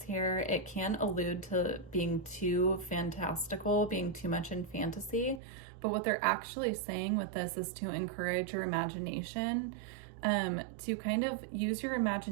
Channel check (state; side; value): drops out; left; at 5.4 s